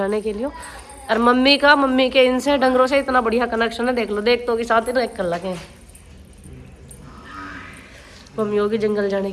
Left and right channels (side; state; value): both; identical; correlation 1.00